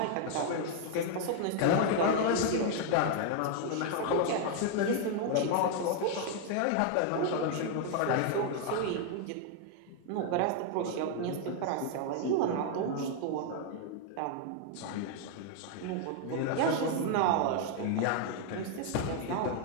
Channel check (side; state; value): both; different; correlation 0.00